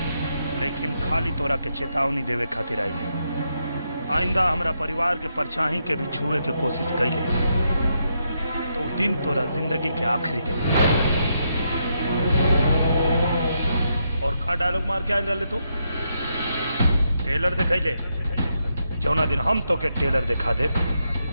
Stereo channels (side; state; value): both; inverted; correlation -0.80